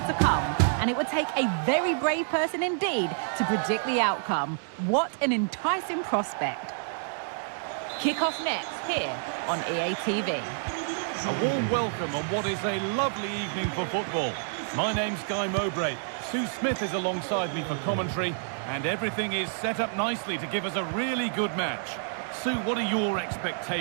to come. and it would take a very brave person indeed to predict the outcome. What an enticing prospect. Kick-off next here on EA TV. A warm welcome on what is a lovely evening for football. My name's Guy Mowbray. Sue Smith is alongside me for commentary, and everything is set up nicely to give us a really good match. Sue, what are your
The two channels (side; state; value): left; silent; 59 dB below the other